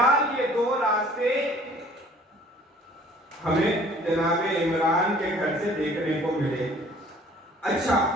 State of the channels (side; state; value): both; normal; correlation 0.53